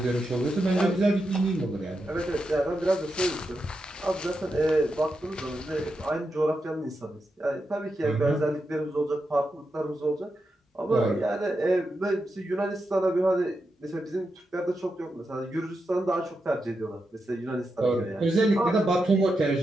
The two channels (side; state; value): both; normal; correlation 0.87